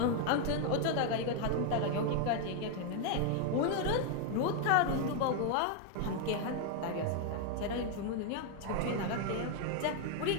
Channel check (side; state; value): both; different; correlation 0.00